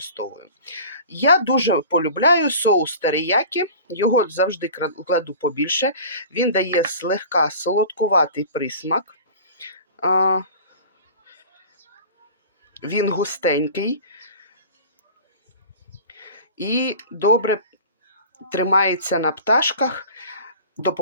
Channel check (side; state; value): both; inverted; correlation -0.40